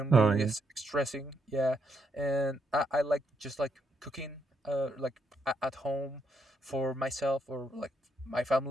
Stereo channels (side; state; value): both; normal; correlation 0.77